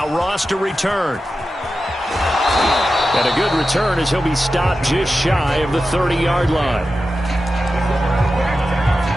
Ross to return. And a good return as he'll be stopped just shy of the 30-yard line.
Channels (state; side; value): normal; both; correlation 0.92